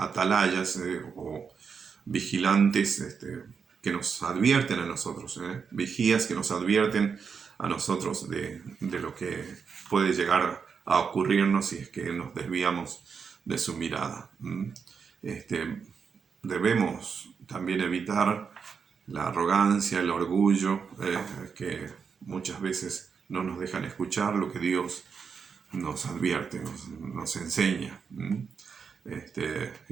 o vigilantes que nos advierten a nosotros, vigías que nos advierten a nosotros de lo que puede llegar a ocurrirnos si es que nos desviamos de su mirada. Debemos también evitar la arrogancia, el orgullo, que muchas veces no nos dejan escuchar lo que Dios nos advierte, nos enseña.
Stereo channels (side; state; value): left; quieter; 6.1 dB